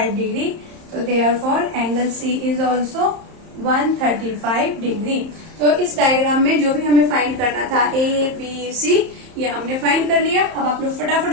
डिग्री। तो therefore angle C is also 135 degree. तो इस डायग्राम में जो भी हमें फाइंड करना था, ए बी सी, ये हमने फाइंड कर लिया। अब आप लोग फटाफट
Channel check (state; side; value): late; left; 31 ms